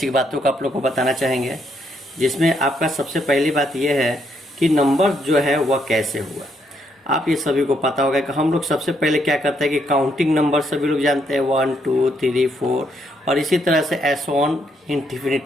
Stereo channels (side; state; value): both; normal; correlation 0.74